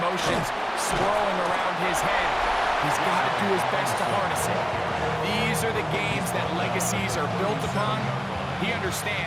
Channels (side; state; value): both; identical; correlation 1.00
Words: emotions swirling around his head, he's got to do his best to harness it. These are the games that legacies are built upon. He